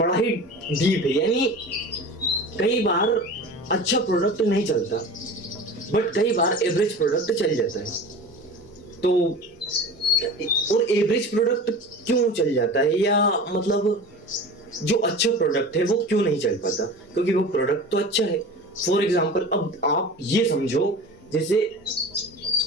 ही डीप है। यानी कई बार अच्छा प्रोडक्ट नहीं चलता, बट कई बार एवरेज प्रोडक्ट चल जाता है। तो और एवरेज प्रोडक्ट क्यों चल जाता है, या मतलब जो अच्छा प्रोडक्ट है वो क्यों नहीं चल पाता? क्योंकि वो प्रोडक्ट तो अच्छा है। फॉर एग्जाम्पल, अब आप ये समझो जैसे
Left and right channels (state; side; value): normal; both; correlation 0.35